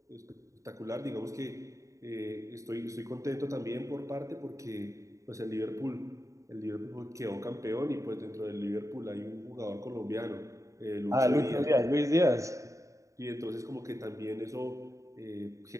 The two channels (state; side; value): late; left; 0.16 ms